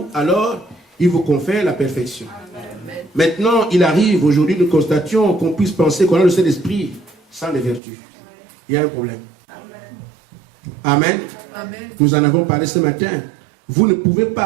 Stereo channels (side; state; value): left; drops out; at 7.8 s